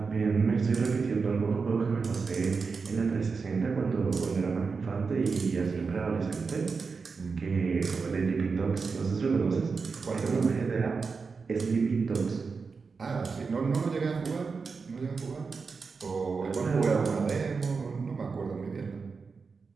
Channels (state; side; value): quieter; left; 4.9 dB